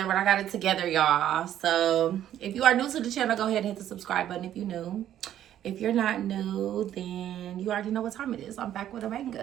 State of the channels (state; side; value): quieter; left; 11.3 dB